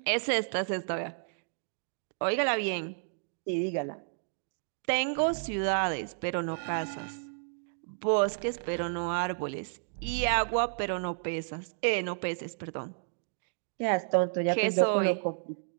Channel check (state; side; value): silent; left; digital silence